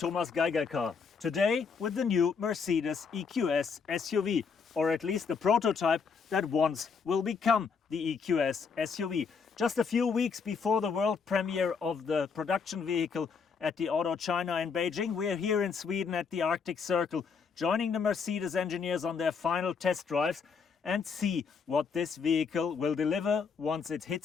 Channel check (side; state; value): right; quieter; 5.7 dB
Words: Geiger Car. Today with the new Mercedes EQS SUV, or at least the prototype that once will become the EQS SUV. Just a few weeks before the world premiere of the production vehicle at the Auto China in Beijing, we are here in Sweden at the Arctic Circle, joining the Mercedes engineers on their final test drives and see what this vehicle will deliver once it